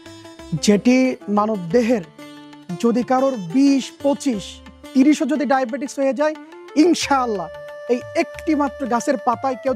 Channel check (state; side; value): identical; both; correlation 1.00